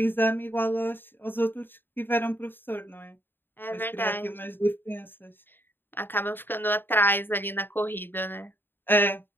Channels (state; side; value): late; right; 0.097 ms